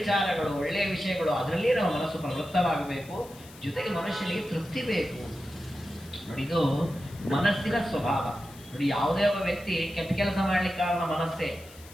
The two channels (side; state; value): left; noise; hiss, 21 dB below the sound